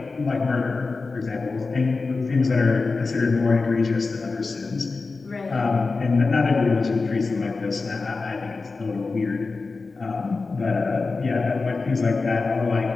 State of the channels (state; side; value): quieter; right; 4.0 dB